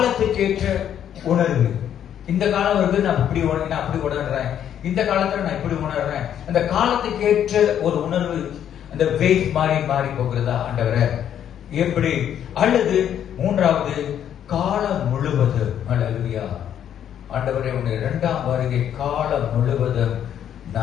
உணர்வு. இந்த காலம் இருக்கு, நான் அப்படி உணர்றேன், இந்த காலத்துல நான் இப்படி உணர்றேன். அந்த காலத்துக்கேற்ற ஒரு உணர்வு, அந்த வெயிட் மாறி போகிறதா ஆண்டவரை எப்படி? அல்லது 3வது காலம் முழுவதும், அல்லேலூயா ஆண்டவரே உன்னுடைய 2ஆம் வருகை காலம் முழுவதும்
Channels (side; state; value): right; quieter; 9.8 dB